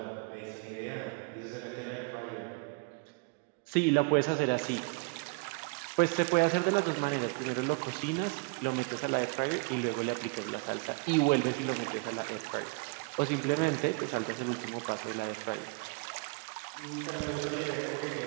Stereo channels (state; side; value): quieter; left; 31.2 dB